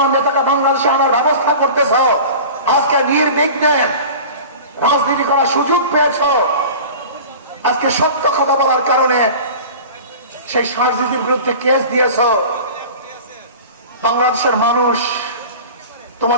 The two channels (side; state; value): both; inverted; correlation -0.37